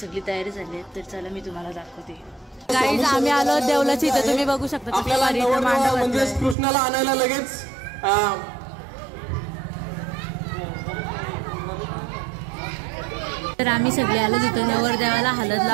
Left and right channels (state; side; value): drops out; left; at 6.6 s